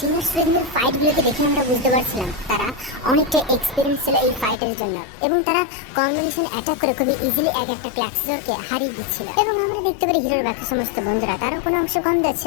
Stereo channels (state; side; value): drops out; right; at 4.5 s